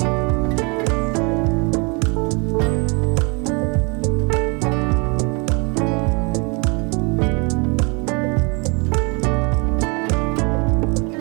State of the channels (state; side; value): quieter; left; 31.2 dB